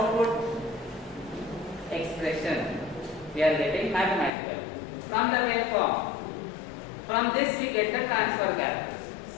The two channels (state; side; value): drops out; right; at 4.3 s